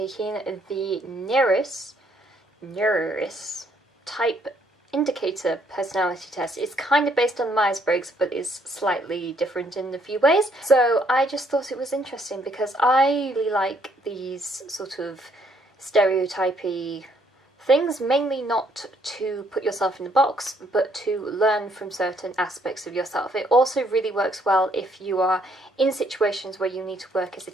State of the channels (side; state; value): both; normal; correlation 0.68